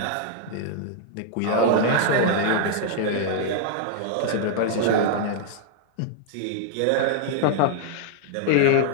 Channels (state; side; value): different; both; correlation -0.01